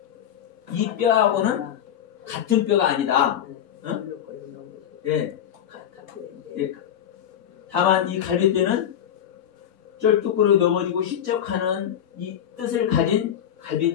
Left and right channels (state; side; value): quieter; right; 9.9 dB